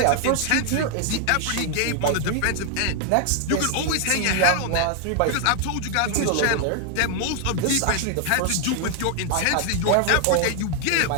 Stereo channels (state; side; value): different; both; correlation 0.00